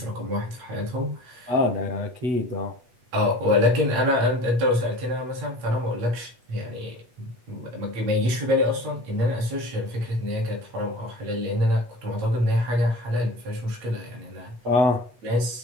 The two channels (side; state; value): left; late; 8.3 ms